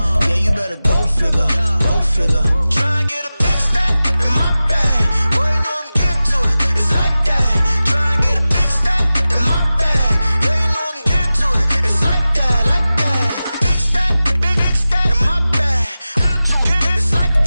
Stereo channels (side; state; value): both; inverted; correlation -0.95